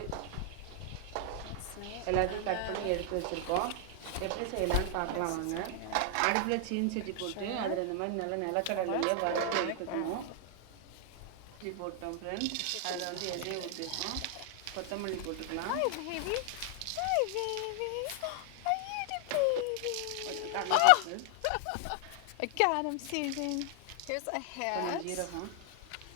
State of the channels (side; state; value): both; different; correlation 0.00